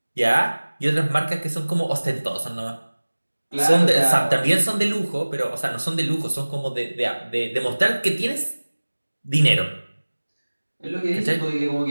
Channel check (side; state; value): both; inverted; correlation -1.00